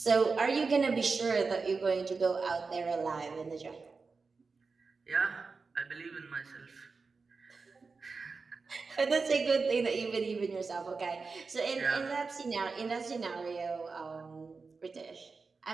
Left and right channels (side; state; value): left; quieter; 4.5 dB